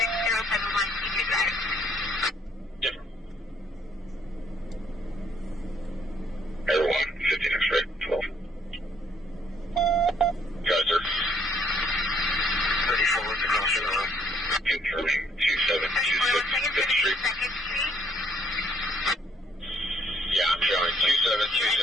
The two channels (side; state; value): both; normal; correlation 0.66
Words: Different. Everyone, 15 X-ray, 12. Geyser. 34 with the caution on. Confirming 2726 5th Street. Yeah, I'm showing